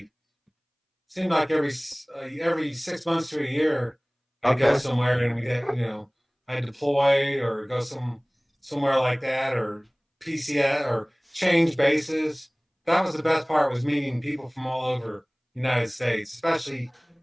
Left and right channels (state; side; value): identical; both; correlation 1.00